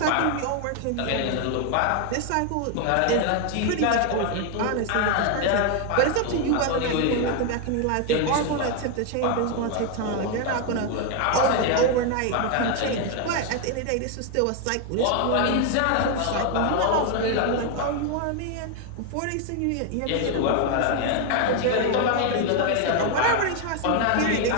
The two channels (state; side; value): different; both; correlation 0.00